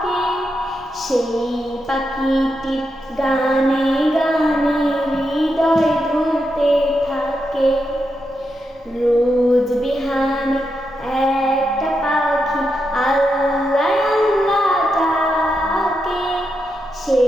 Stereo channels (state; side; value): normal; both; correlation 0.85